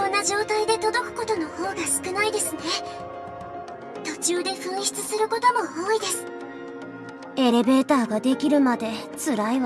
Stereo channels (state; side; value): identical; both; correlation 1.00